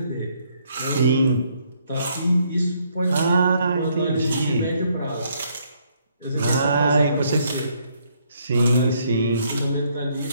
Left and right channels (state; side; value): inverted; both; correlation -0.70